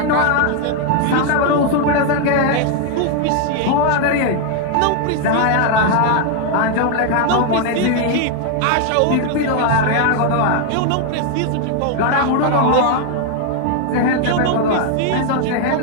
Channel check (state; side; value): different; both; correlation 0.00